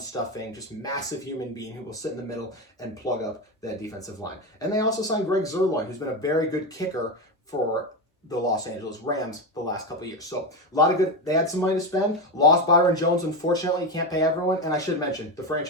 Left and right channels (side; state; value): both; normal; correlation 0.15